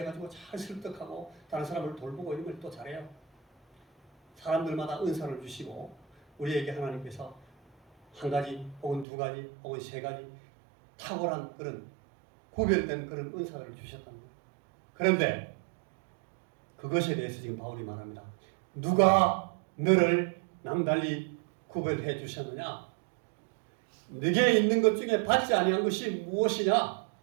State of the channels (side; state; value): left; drops out; at 9.1 s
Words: 잘 설득하고 다른 사람을 돌보고 이런 걸 또 잘해요. 사람들마다 은사를 주시고 우리에게 하나님께서 한 가지 혹은 두 가지 혹은 세 가지 탁월한 그런 구별된 그런 은사를 주셨다는 거예요. 그런데 그것에 대해서 지금 바울이 말합니다. 누가 너를 남달리 구별해 주셨느냐? 네게 있는 것 중에 받지 아니한 것이 무엇이냐?